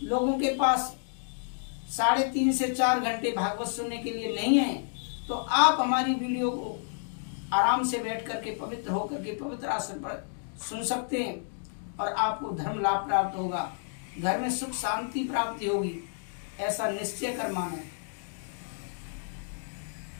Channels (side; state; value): right; silent; digital silence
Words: लोगों के पास 3.5 से 4 घंटे भागवत सुनने के लिए नहीं है, तो आप हमारी वीडियो को आराम से बैठ करके, पवित्र होकर के, पवित्र आसन पर सुन सकते हैं और आपको धर्म लाभ प्राप्त होगा, घर में सुख शांति प्राप्ति होगी, ऐसा निश्चय कर माने।